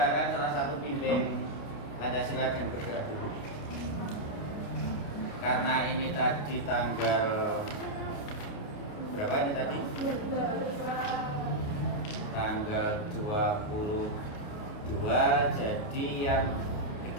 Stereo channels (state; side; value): late; right; 28 ms